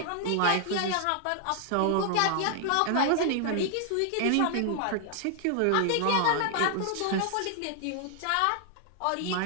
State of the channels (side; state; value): both; different; correlation 0.00